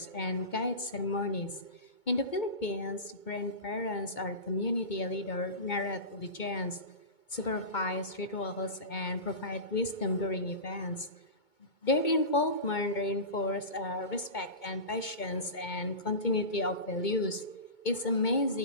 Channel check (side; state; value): right; late; 2.2 ms